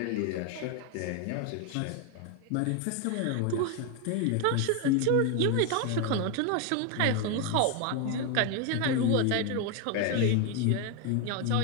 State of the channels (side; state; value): both; different; correlation 0.01